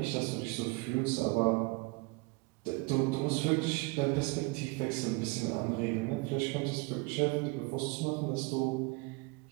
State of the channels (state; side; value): quieter; left; 26.3 dB